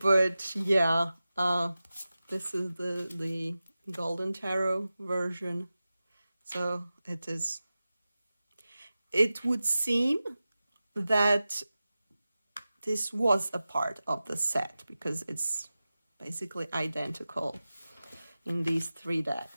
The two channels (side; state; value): both; inverted; correlation -0.95